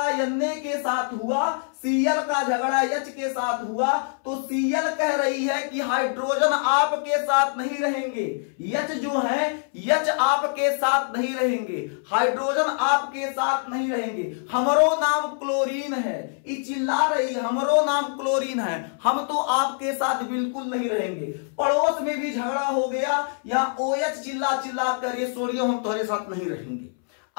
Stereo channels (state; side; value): silent; right; 62 dB below the other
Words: Na के साथ हुआ, Cl का झगड़ा H के साथ हुआ तो Cl कह रही है कि हाइड्रोजन आपके साथ नहीं रहेंगे, H जो है H आपके साथ नहीं रहेंगे, हाइड्रोजन आपके साथ नहीं रहेंगे, हमरो नाम क्लोरीन है। ये चिल्ला रही हमरो नाम क्लोरीन है, हम तो आपके साथ बिल्कुल नहीं रहेंगे। पड़ोस में भी झगड़ा हो गया, यहाँ OH चिल्ला कर ये सोडियम हम तुम्हारे साथ नहीं रहेंगे।